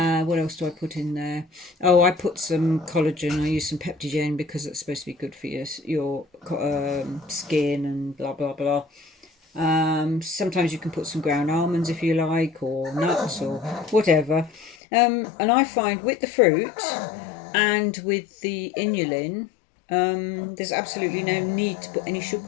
else do I put in there? Oh, I put some collagen. I use some Peptigen because it's supposed to be good for your skin and blah blah blah. Sometimes you can put some ground almonds if you like, or nuts or whatever. And I find with the fruit and with the inulin, there's absolutely no need to put any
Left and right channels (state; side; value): drops out; right; at 14.8 s